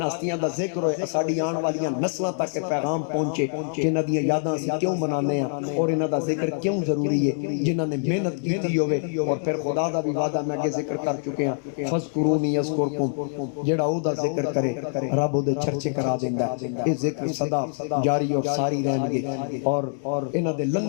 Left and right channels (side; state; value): right; silent; digital silence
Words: ہستیاں دا ذکر ہوئے ساڑھی آن والیاں نسلہ تک پیغام پہنچے کہ انہاں دیاں یاداں سے کیوں بنانے ہیں اور انہاں دا ذکر کیوں ضروری ہے جنہاں نے محنت کی تھی ہوئے اور پھر خدا دا بھی وعدہ میں کے ذکر کر چکے ہیں فذکرونی یذکرکم جیڑا او دا ذکر کرے رب او دے چرچے کرا دیندا ہے یہ ذکر صدا جاری اور ساری رہن گے اور انہاں دے